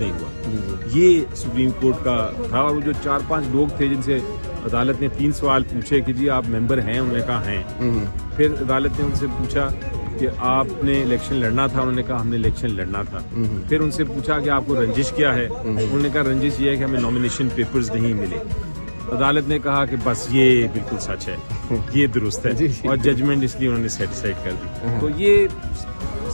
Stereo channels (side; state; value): both; inverted; correlation -1.00